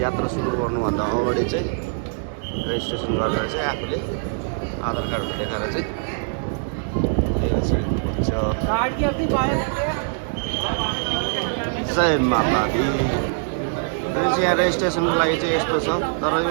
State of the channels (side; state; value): left; silent; digital silence